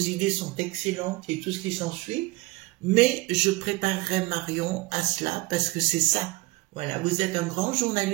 sont excellentes et tout ce qui s'ensuit, mais je préparerais Marion à cela parce que c'est ça. Voilà, vous êtes un grand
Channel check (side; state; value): left; quieter; 22.3 dB